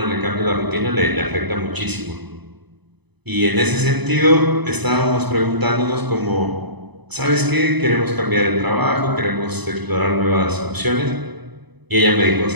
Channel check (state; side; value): late; left; 0.99 ms